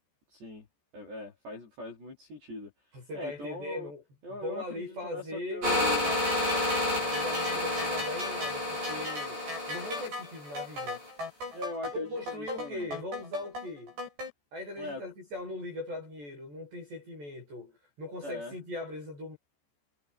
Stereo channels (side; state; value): left; late; 14 ms